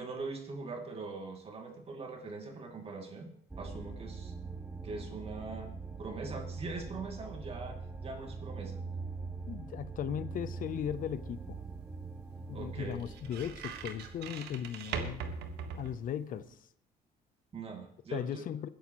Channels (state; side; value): normal; both; correlation 0.51